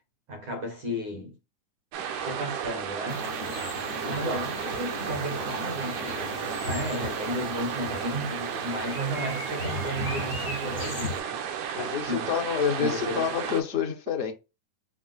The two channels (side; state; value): left; late; 9.3 ms